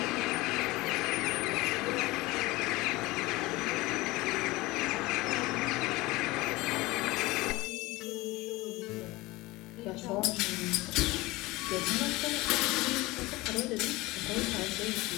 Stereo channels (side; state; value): right; quieter; 20.7 dB